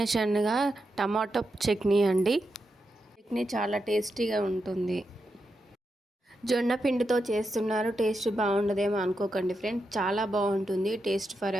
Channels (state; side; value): normal; both; correlation 0.86